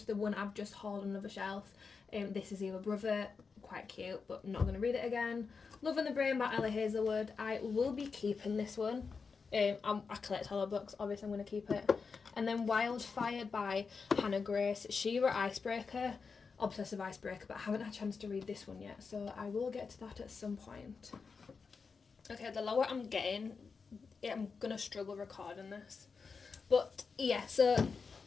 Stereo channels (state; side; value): quieter; right; 5.1 dB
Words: the one I've just hauled on another shelf. This is Either Brother. Quite cute, but not going to read it again. Love in the Brain by Ellie Hazelwood. I will be keeping this one. I collect horror books, obviously I'm going to keep it. And then Wildfire by Hannah Grace. She-Ra Icebreaker. Obsessive Icebreaker, but I haven't had a chance to read this one yet, so I will get to that at some point. Okay, the lower I'm getting, I'm going to struggle recording this. But yeah, so